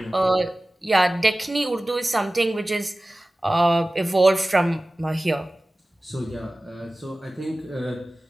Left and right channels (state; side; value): normal; both; correlation 0.97